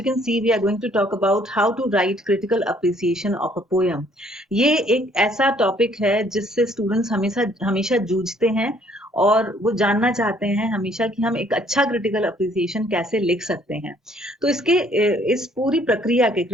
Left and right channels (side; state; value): both; normal; correlation 0.63